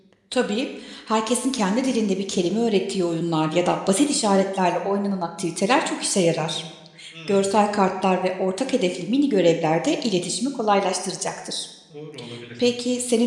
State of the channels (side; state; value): both; identical; correlation 1.00